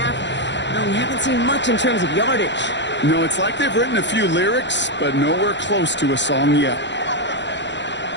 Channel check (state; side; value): late; right; 0.52 ms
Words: well, we haven't seen much in terms of yardage. No, it's like they've written a few lyrics, but nowhere close to a song yet.